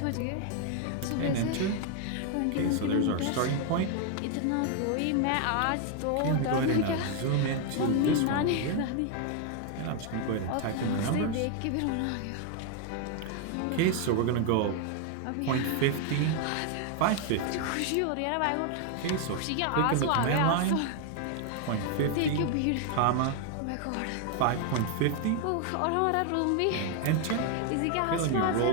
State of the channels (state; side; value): different; both; correlation 0.00